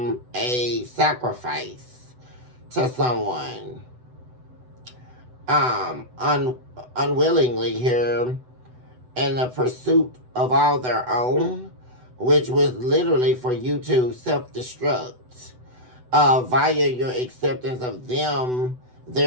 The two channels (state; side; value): late; left; 8.0 ms